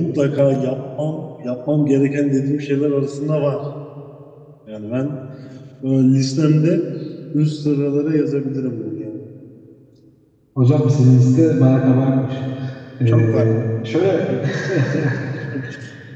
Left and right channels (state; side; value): identical; both; correlation 1.00